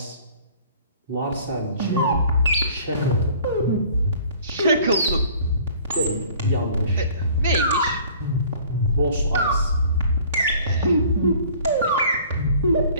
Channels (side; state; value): both; inverted; correlation -0.52